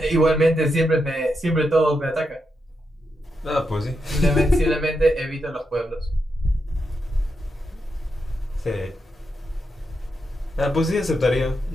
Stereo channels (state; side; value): normal; both; correlation 0.84